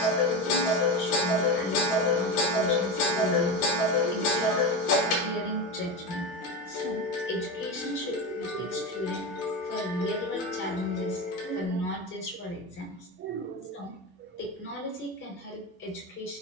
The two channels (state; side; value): normal; both; correlation 0.20